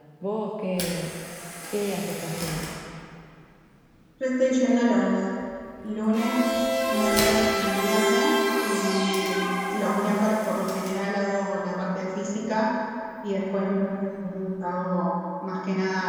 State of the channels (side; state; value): both; identical; correlation 1.00